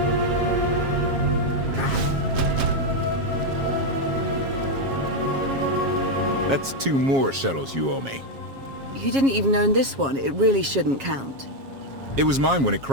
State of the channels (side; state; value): left; late; 7.4 ms